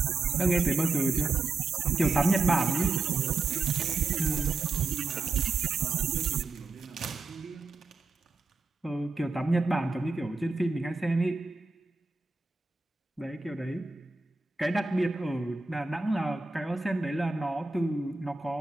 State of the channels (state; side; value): quieter; left; 3.7 dB